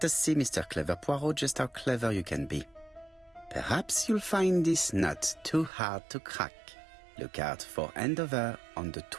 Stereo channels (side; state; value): left; drops out; at 5.7 s